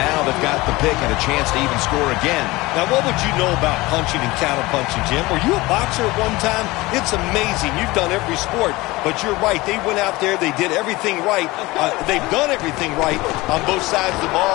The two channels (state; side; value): quieter; right; 20.9 dB